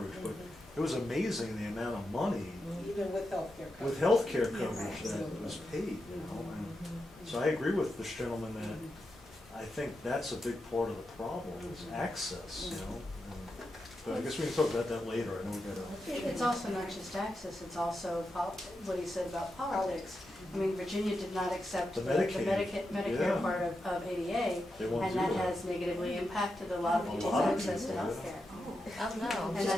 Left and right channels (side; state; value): both; normal; correlation 0.88